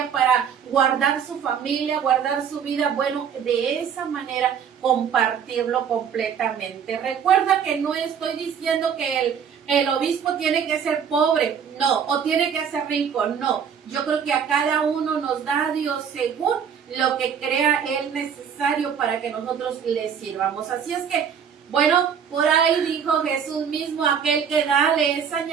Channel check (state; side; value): quieter; left; 7.6 dB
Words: para guardar su familia, guardar su vida, bueno, de esa manera compartirlo completamente. Recuerda que no estoy diciendo que el obispo tiene que ser pobre, no, o tiene que ser rico, no. Yo creo que a cada uno nos da Dios según lo que crea Él necesario para que nosotros le sirvamos. Así es que, bueno, por ahí dijo Jesús mismo, aquel que da le es